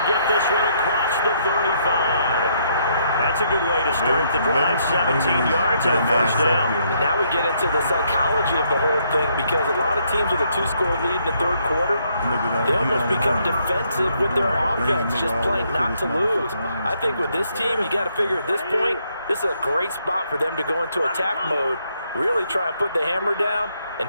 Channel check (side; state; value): both; inverted; correlation -0.72